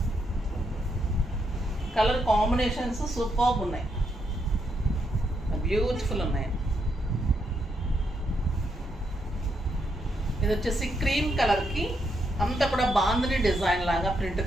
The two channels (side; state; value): both; normal; correlation 0.79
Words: కలర్ కాంబినేషన్స్ సూపర్బ్ ఉన్నాయి, బ్యూటిఫుల్ ఉన్నాయి. ఇది వచ్చేసి క్రీమ్ కలర్కి అంతా కూడా బాందిని డిజైన్ లాగా ప్రింట్